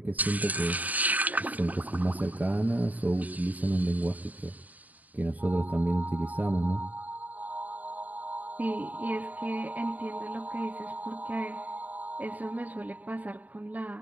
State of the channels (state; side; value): late; left; 0.077 ms